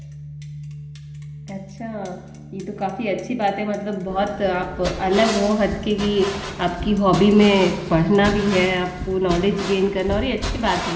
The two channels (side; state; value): both; identical; correlation 1.00